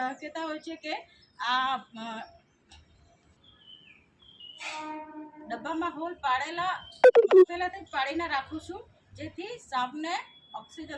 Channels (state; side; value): identical; both; correlation 1.00